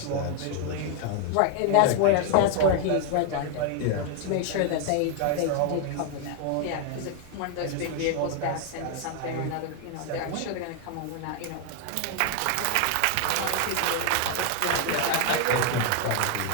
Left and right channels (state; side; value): different; both; correlation 0.00